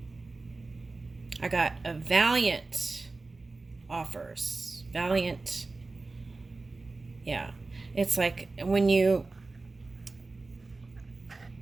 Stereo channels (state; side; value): quieter; left; 3.5 dB